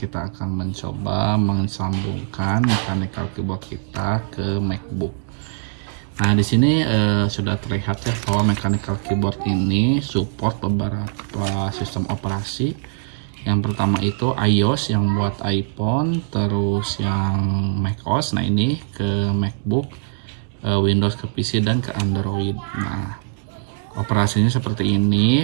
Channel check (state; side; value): silent; left; digital silence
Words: akan mencoba mensambungkan mechanical keyboard kita ke MacBook. Nah, di sini sudah terlihat ya bahwa mechanical keyboard ini support beberapa sistem operasi. Yang pertama itu iOS yang buat iPhone, terus yang macOS. Nah, ini ke MacBook, Windows ke PC dan ke Android. Nah, operasinya seperti